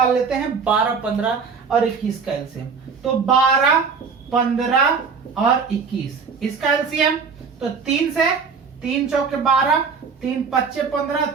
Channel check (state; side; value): quieter; left; 5.5 dB